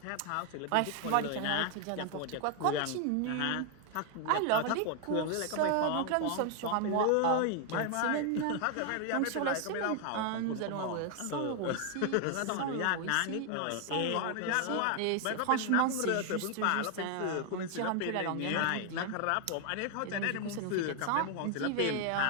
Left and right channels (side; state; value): both; different; correlation 0.00